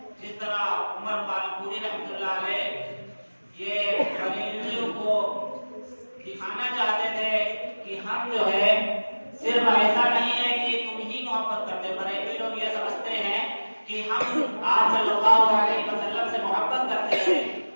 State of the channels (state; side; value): inverted; both; correlation -1.00